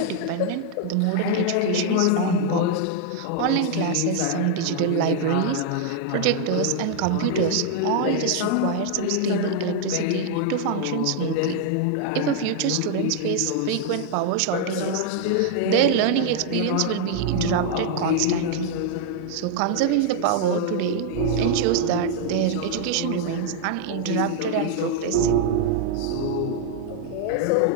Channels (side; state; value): both; different; correlation 0.00